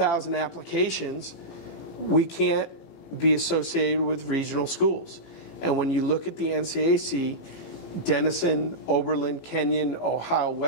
applications, we can't be associated with regional schools. And when you look at the NCAC, Denison, Oberlin, Kenyon, Ohio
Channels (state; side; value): late; right; 18 ms